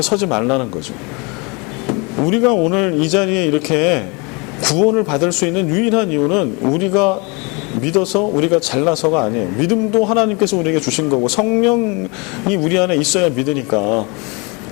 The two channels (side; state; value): right; quieter; 29.5 dB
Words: 서지 말라는 거죠. 우리가 오늘 이 자리에 이렇게 구원을 받을 수 있는 유일한 이유는 우리가 믿어서 우리가 잘나서가 아니에요. 믿음도 하나님께서 우리에게 주신 거고, 성령이 우리 안에 있어야 믿으니까